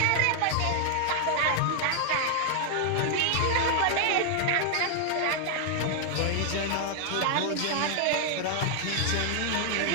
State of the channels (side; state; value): both; different; correlation 0.00